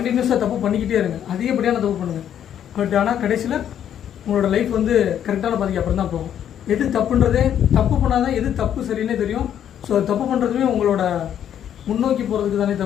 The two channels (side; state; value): right; quieter; 9.8 dB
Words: தப்பு பண்ணிக்கிட்டே இருங்க, அதிகப்படியான தப்பு பண்ணுங்கள். பட் ஆனால் கடைசியில் உங்களோட லைஃப் வந்து கரெக்டான பாதிக்கு அப்புறம் தான் போகும். எது தப்புன்றதே, தப்பு பண்ணால் தான் எது தப்பு சரின்னே தெரியும். ஸோ தப்பு பண்ணுறதுமே உங்களோட முன்னோக்கி போகிறதுக்கு தானே